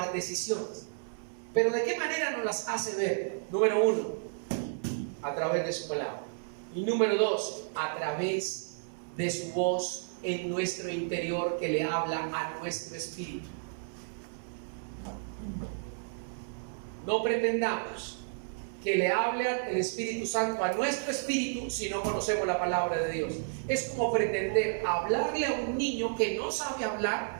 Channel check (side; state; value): left; silent; 57 dB below the other